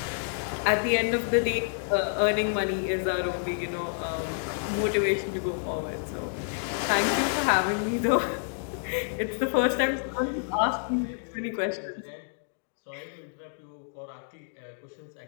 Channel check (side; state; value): right; silent; digital silence